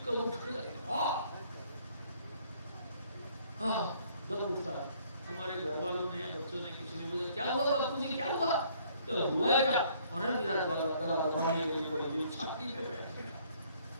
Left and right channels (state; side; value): inverted; both; correlation -0.62